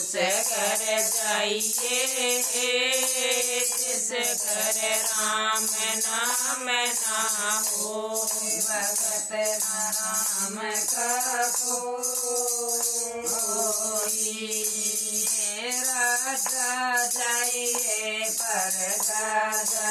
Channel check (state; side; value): identical; both; correlation 1.00